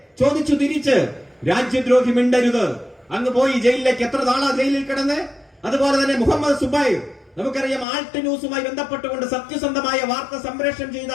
ചോദിച്ചു തിരിച്ച്, രാജ്യദ്രോഹി മിണ്ടരുത്. അങ്ങ് പോയി ജയിലിലേക്ക്. എത്ര നാളാ ജയിലിൽ കിടന്ന്? അതുപോലെ തന്നെ മുഹമ്മദ് സുബൈർ, നമുക്കറിയാം, ആൾട്ട് ന്യൂസുമായി ബന്ധപ്പെട്ടുകൊണ്ട് സത്യസന്ധമായ വാർത്ത സംപ്രേഷണം ചെയ്ത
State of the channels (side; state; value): right; drops out; at 7.9 s